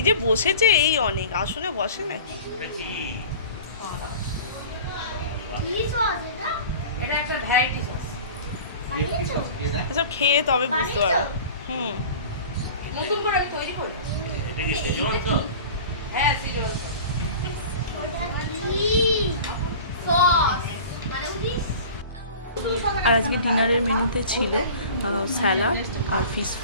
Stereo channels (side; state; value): both; inverted; correlation -0.39